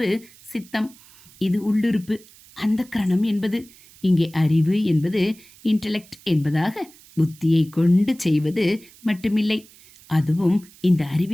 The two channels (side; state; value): right; noise; hiss, 24 dB below the sound